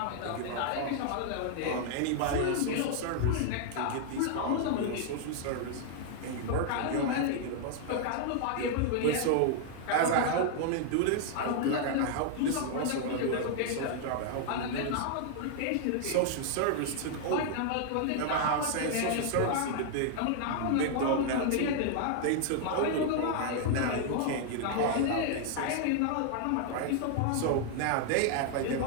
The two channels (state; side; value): different; both; correlation 0.00